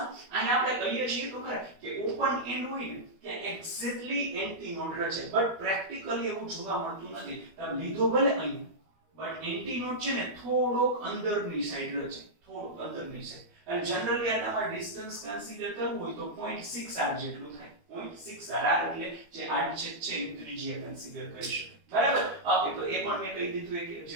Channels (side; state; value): left; late; 12 ms